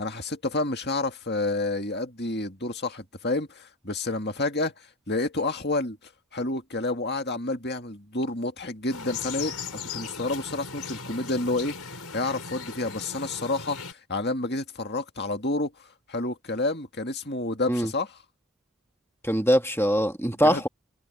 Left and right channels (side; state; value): both; normal; correlation 0.33